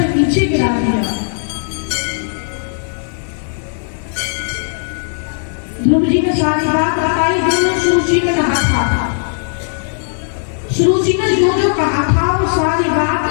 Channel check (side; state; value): right; silent; digital silence